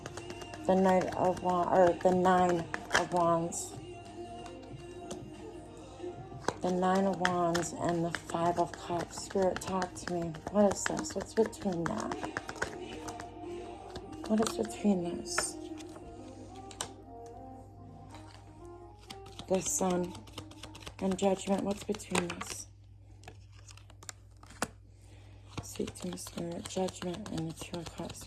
the Knight of Wands, or the Nine of Wands. The Nine of Wands and the Five of Cups. Spirit, talk to me. What is this? What's between that? What is between this? The Sun and Judgment. What's between this? Speak to me, Spirit. Judgment and the Two of Cups,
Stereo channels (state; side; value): identical; both; correlation 1.00